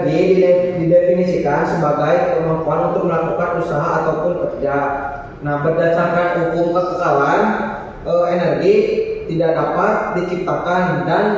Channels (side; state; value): both; identical; correlation 1.00